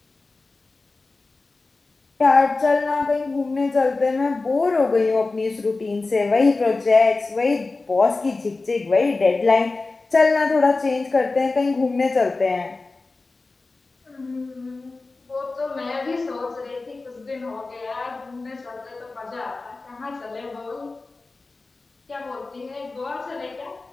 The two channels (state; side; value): quieter; right; 3.6 dB